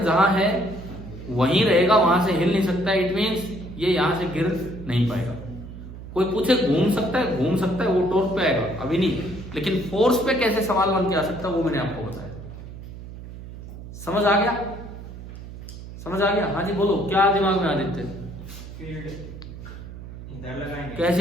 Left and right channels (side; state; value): right; noise; hum, 13 dB below the sound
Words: जहां है वहीं रहेगा, वहां से हिल नहीं सकता। इट मींस ये यहां से गिर नहीं पाएगा। कोई पूछे घूम सकता है, घूम सकता है, वो टॉर्क पे आएगा, अभी नहीं। लेकिन फोर्स पे कैसे सवाल बन के आ सकता है वो मैंने आपको बताया। समझ आ गया? समझ आ गया? हाँ जी बोलो, क्या दिमाग में आदित्य? फील्ड इधर लगाएंगे,